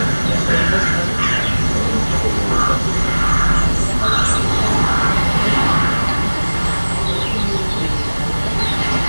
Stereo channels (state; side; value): inverted; both; correlation -1.00